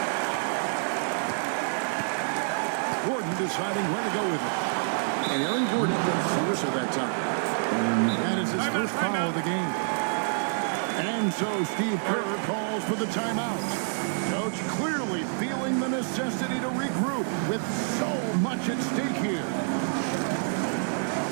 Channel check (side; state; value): left; silent; digital silence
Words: Gordon deciding where to go with it. And Aaron Gordon gets the whistle that time. That is his first foul of the game. And so Steve Kerr calls for the timeout. Coach clearly feeling the necessity to regroup with so much at stake here.